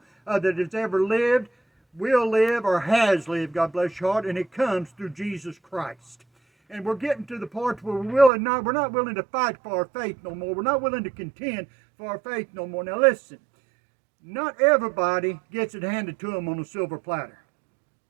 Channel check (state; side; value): drops out; left; at 8.3 s